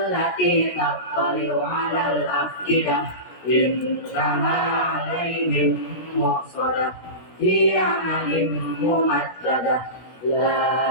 tattali'u 'alal afidah innaha 'alaihim muqsadah fi 'amalin mumaddadah.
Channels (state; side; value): late; right; 17 ms